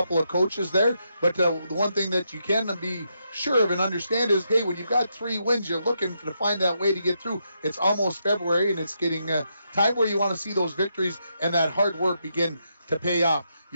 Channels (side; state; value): both; inverted; correlation -0.81